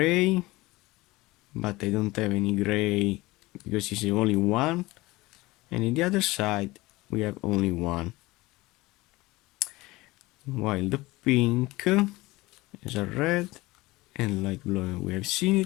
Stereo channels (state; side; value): quieter; right; 20.5 dB